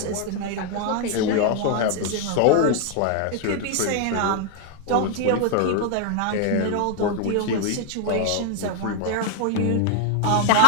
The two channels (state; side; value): different; both; correlation 0.01